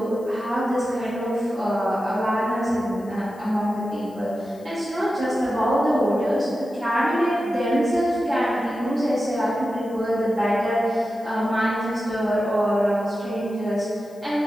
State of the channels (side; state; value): left; noise; hiss, 28 dB below the sound